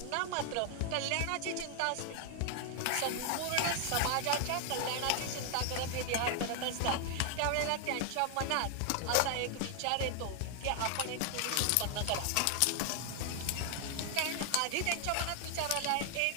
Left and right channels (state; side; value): different; both; correlation 0.00